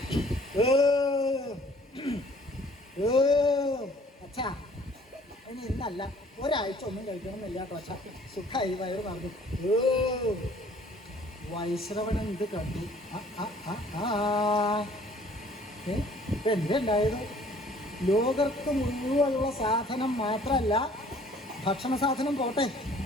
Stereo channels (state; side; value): normal; both; correlation 0.55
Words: അച്ഛാ, ഇനി ഇന്നല്ല, ഒരാഴ്ച ഒന്നും കഴിക്കണമെന്നില്ല കേട്ടോ അച്ഛാ. സുഖമായി വയറ് പറഞ്ഞു. വൈശ്രവണൻ ഇത് കണ്ടു. എന്തുണ്ടായത്? ലോകർക്ക് മുഴുവനുള്ള സാധനം മാത്രമല്ല, ഭക്ഷണ സാധനം പോട്ടെ,